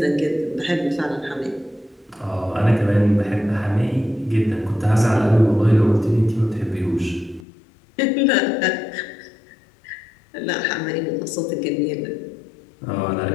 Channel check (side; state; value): right; drops out; at 7.5 s